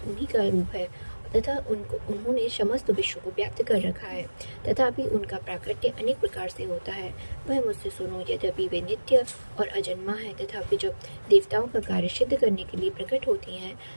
उन्हीं का रूप है तथा उन्होंने समस्त विश्व को व्याप्त कर रखा है, तथापि उनका प्राकट्य अनेक प्रकार से होता है। वह मुझसे सुनो। यद्यपि वे नित्य और अजन्मा है, तथापि जब देवताओं का कार्य सिद्ध करने के लिए प्रकट होती हैं,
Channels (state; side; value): inverted; both; correlation -1.00